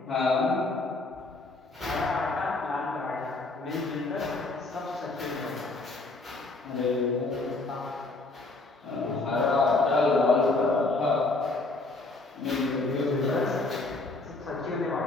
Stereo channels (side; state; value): right; quieter; 3.2 dB